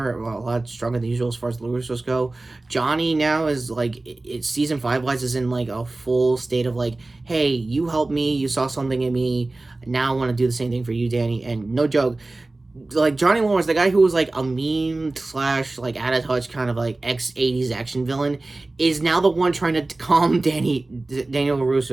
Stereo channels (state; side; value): quieter; left; 3.0 dB